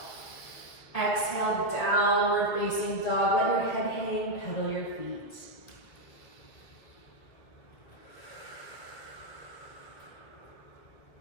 Exhale, downward facing dog. Let your head hang, pedal your feet.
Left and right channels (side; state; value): right; late; 2.3 ms